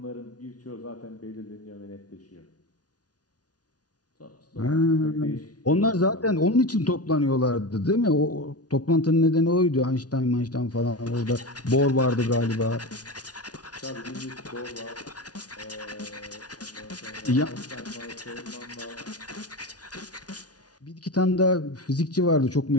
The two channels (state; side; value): late; right; 0.69 ms